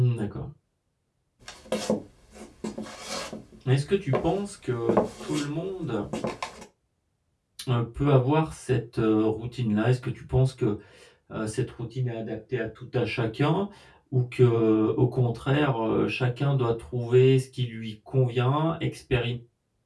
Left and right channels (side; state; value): both; identical; correlation 1.00